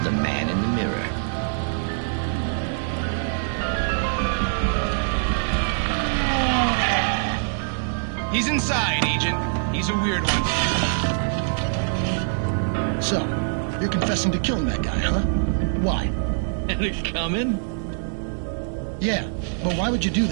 The Man in the Mirror. He's inside, Agent. He's a weird one. So, you're confessing to killing that guy, huh? Why? And it coming? Yeah, but why would you do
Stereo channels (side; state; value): left; silent; digital silence